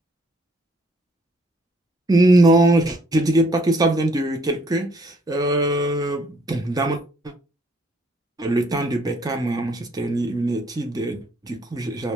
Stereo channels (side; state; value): both; normal; correlation 0.65